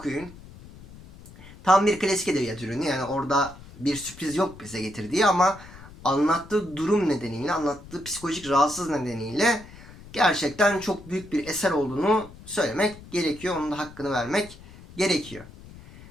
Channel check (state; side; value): noise; left; rumble, 19 dB below the sound